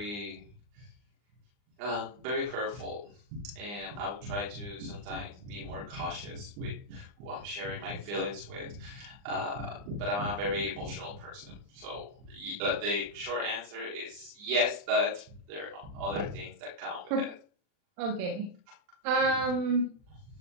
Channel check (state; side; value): late; left; 39 ms